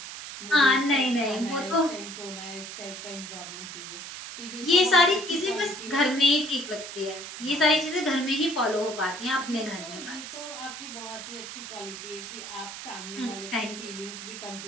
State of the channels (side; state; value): right; noise; hiss, 10 dB below the sound